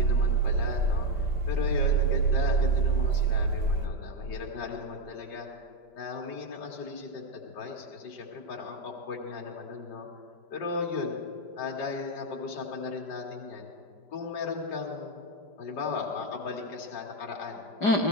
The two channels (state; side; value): late; right; 5.1 ms